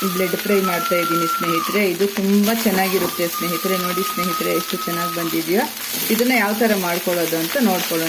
ಫ್ರೈ ಮಾಡ್ತಾ ಇದ್ದೀನಿ ಸ್ನೇಹಿತರೆ. ಇದು ತುಂಬ ಚೆನ್ನಾಗಿರುತ್ತೆ ಸ್ನೇಹಿತರೆ. ನೋಡಿ ಸ್ನೇಹಿತರೆ, ಎಷ್ಟು ಚೆನ್ನಾಗಿ ಬಂದಿದೆಯೋ. ಇದನ್ನು ಯಾವ ಥರ ಮಾಡ್ಕೊಳ್ಳೋದು ಅಂತ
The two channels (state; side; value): identical; both; correlation 1.00